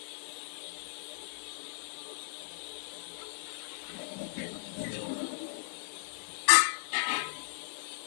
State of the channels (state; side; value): silent; right; digital silence